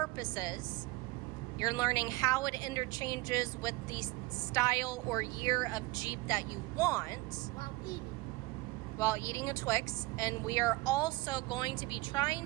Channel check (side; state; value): left; quieter; 21.5 dB